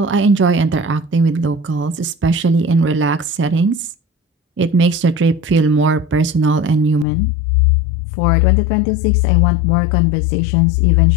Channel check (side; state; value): right; drops out; at 7.1 s